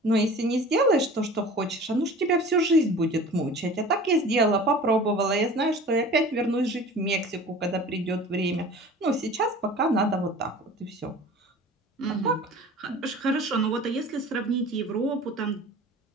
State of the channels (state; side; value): normal; both; correlation 0.41